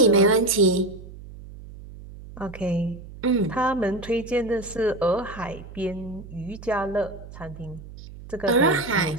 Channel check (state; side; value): noise; right; hum, 15 dB below the sound